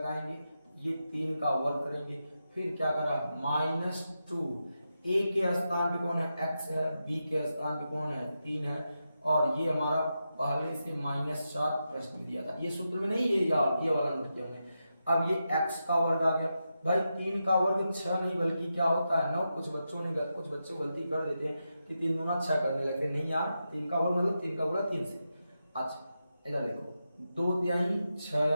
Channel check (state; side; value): inverted; both; correlation -0.88